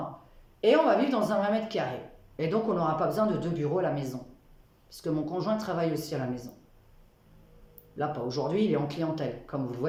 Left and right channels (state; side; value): identical; both; correlation 1.00